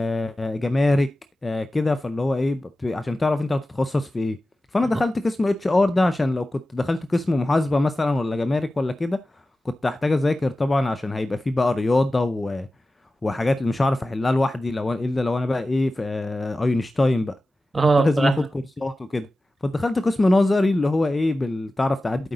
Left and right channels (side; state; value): both; normal; correlation 0.95